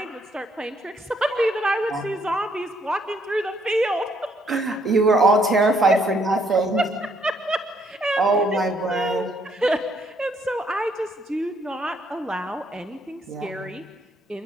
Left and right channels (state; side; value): normal; both; correlation 0.70